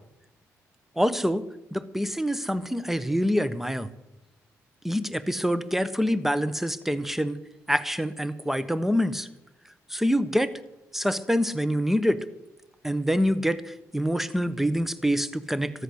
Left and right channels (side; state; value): both; normal; correlation 0.95